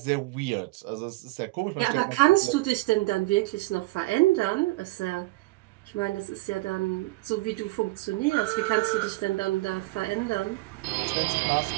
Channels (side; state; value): left; quieter; 21.1 dB